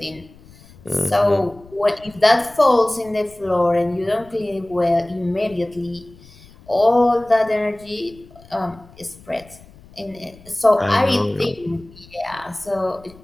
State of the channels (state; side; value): noise; left; rumble, 24 dB below the sound